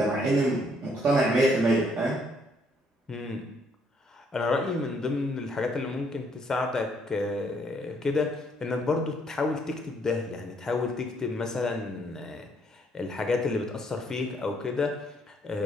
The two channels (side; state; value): both; normal; correlation 0.69